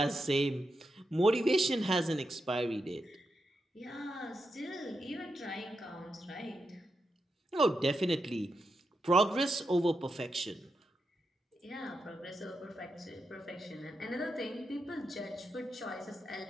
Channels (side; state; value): both; normal; correlation 0.86